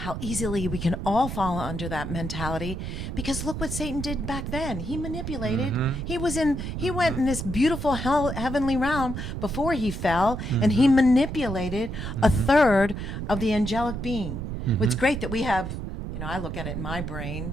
easily we can all fall under that mentality, because look what Satan did back then. He manipulated. He went in this beautiful heavenly realm before he fell, and he manipulated a third of the angelic being. It's great that we have, I look at it in my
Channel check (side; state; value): right; noise; rumble, 5 dB below the sound